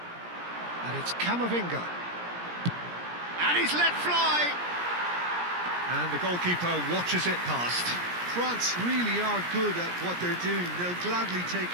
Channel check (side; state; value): left; late; 17 ms